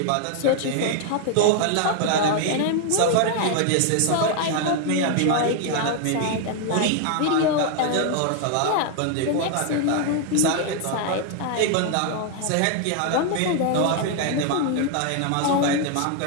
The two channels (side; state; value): both; different; correlation 0.00